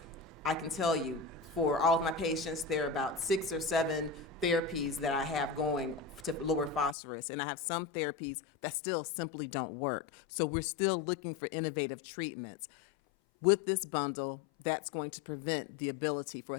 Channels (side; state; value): right; drops out; at 7.0 s